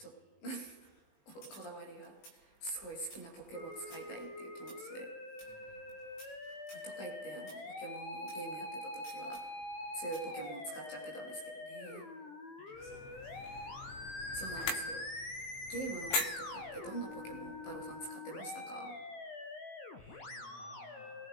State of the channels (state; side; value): late; right; 18 ms